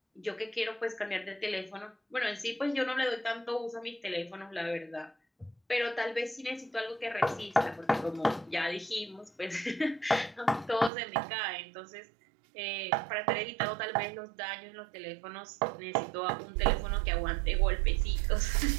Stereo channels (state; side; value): drops out; left; at 10.9 s